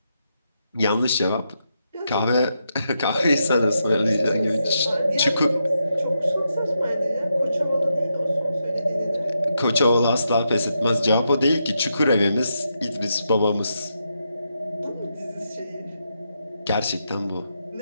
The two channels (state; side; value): inverted; both; correlation -0.83